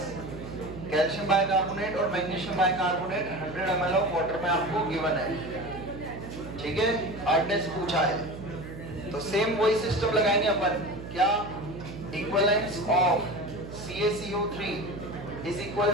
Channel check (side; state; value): right; noise; hum, 11 dB below the sound